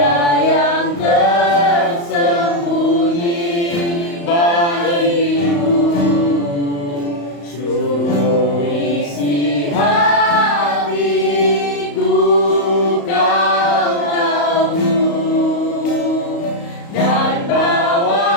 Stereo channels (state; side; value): late; right; 35 ms